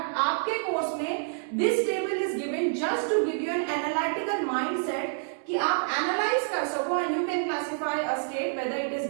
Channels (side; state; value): left; silent; 59 dB below the other